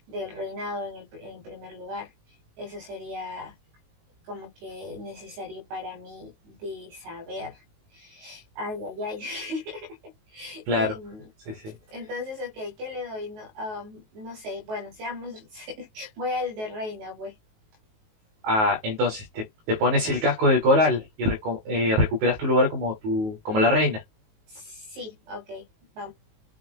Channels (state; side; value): late; left; 19 ms